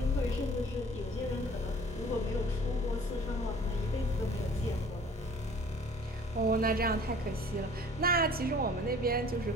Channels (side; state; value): both; normal; correlation 0.51